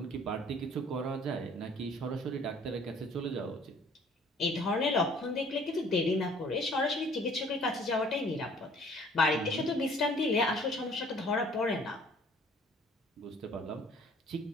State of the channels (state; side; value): normal; both; correlation 0.55